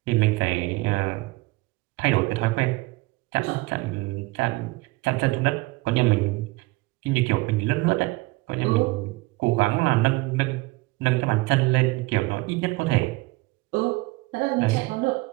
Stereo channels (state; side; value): quieter; left; 22.6 dB